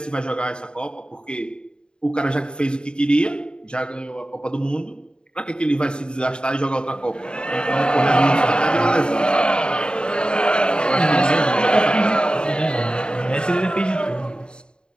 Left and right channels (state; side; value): late; right; 0.050 ms